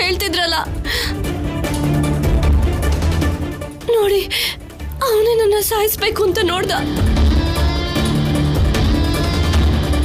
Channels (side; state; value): both; identical; correlation 1.00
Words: ಹೇಳ್ತಿದ್ರಲ್ಲ. ನೋಡಿ, ಅವನೇ ನನ್ನ ಸಾಯಿಸ್ಬೇಕು ಅಂತ ನೋಡ್ದ.